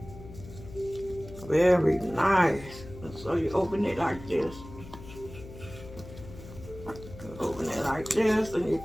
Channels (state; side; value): noise; left; hum, 15 dB below the sound